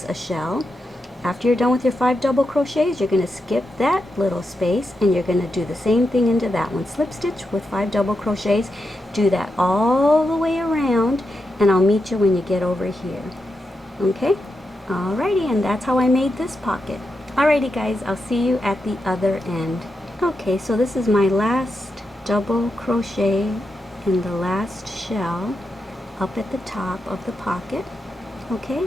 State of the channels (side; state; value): both; normal; correlation 0.87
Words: a shell. After you're done with your 5 double crochets, you're going to skip that little space and you're going to do the same thing into that one. Slip stitch with 5 double crochets. Do that all the way around, and I'll meet you when you get over here. Okay? Alrighty, and that's how I made this pocket. Alrighty guys, I'll see you at the other end. Okay, so this is my last double crochet in the last shell up at the top of the pocket.